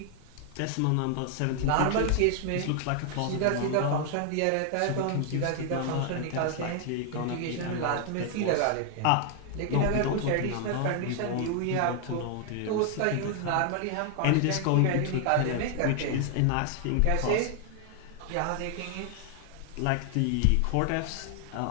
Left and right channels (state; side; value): different; both; correlation 0.00